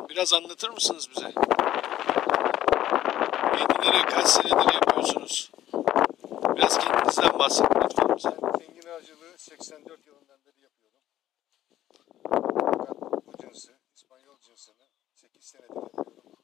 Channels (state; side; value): quieter; right; 12.7 dB